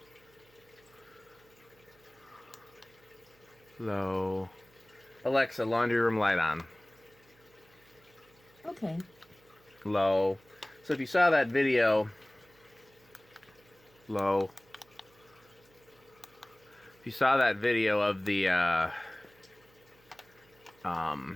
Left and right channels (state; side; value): noise; right; hum, 30 dB below the sound